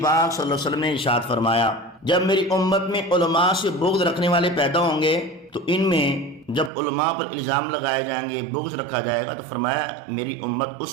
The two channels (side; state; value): left; drops out; at 6.7 s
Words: صلی اللہ علیہ وسلم نے ارشاد فرمایا، جب میری امت میں علماء سے بغض رکھنے والے پیدا ہوں گے تو ان میں جب علماء پر الزام لگائے جائیں گے، بغض رکھا جائے گا، تو فرمایا میری امت